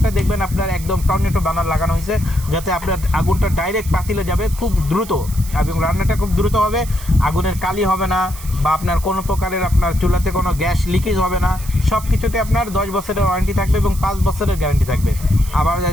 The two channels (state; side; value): noise; right; hiss, 15 dB below the sound